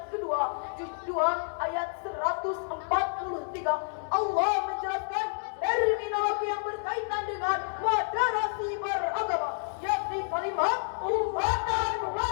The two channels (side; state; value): right; silent; digital silence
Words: kedua juz 2 ayat 143. Allah menjelaskan terminologi yang berkaitan dengan moderasi beragama, yakni kalimat ummatan